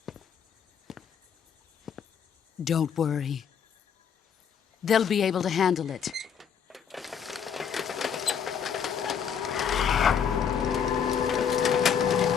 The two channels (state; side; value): quieter; right; 7.6 dB